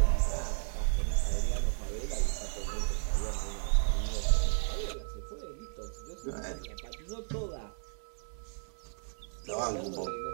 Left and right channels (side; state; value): left; silent; digital silence